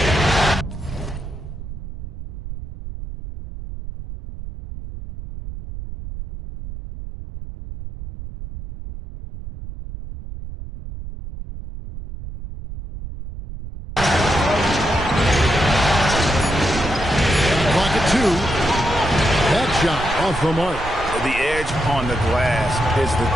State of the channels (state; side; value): noise; right; rumble, 10 dB below the sound